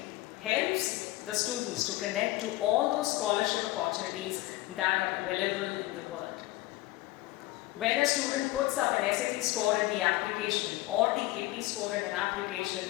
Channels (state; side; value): quieter; right; 18.3 dB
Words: helps the students to connect to all those scholarship opportunities that are available in the world. When a student puts up an SAT score in the application or the AP score in an